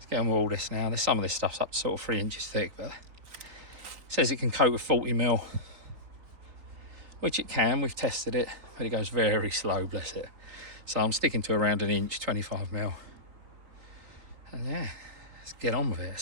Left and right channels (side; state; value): left; late; 3.8 ms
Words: get on with all this now. There's some of this stuff's up to sort of 3 inches thick, but it says it can coat with 40mm, which it can. We've tested it, but it goes very slow, bless it. So I'm sticking to around 1 inch, 25mm. And yeah, let's get on with it.